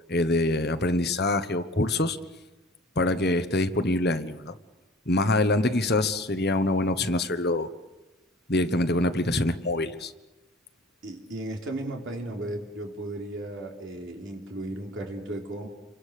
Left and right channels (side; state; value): both; normal; correlation 0.44